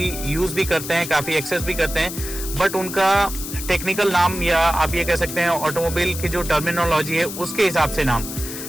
यूज़ भी करते हैं, काफ़ी एक्सेस भी करते हैं, बट उनका टेक्निकल नाम या आप ये कह सकते हैं ऑटोमोबाइल की जो टर्मिनोलॉजी है उसके हिसाब से नाम।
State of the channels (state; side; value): noise; left; hiss, 8 dB below the sound